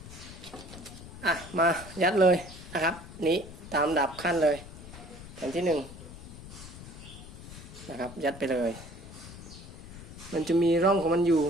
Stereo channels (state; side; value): noise; left; rumble, 14 dB below the sound